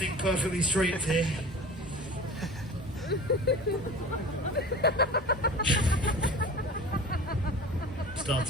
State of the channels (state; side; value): normal; both; correlation 0.37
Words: perfectly straight here.